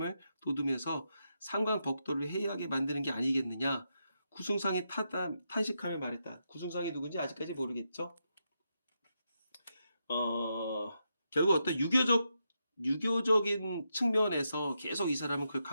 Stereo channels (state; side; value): inverted; both; correlation -0.84